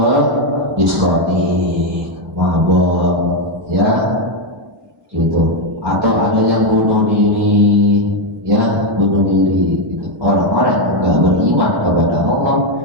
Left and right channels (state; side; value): normal; both; correlation 0.05